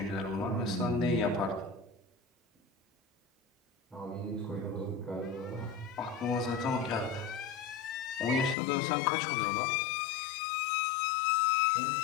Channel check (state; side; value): drops out; right; at 8.6 s